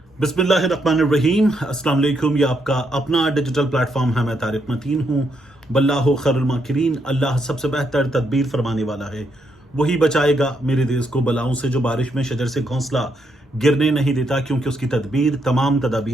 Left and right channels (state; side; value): normal; both; correlation 0.77